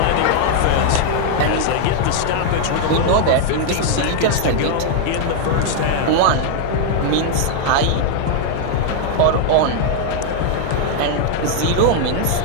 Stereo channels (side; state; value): both; different; correlation -0.01